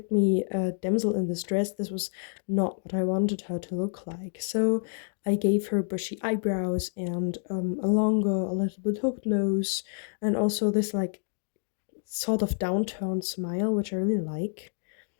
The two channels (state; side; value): silent; right; 59 dB below the other